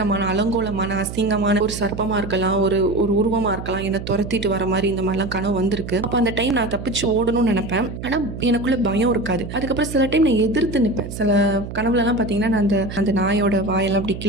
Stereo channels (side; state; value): right; noise; hum, 9 dB below the sound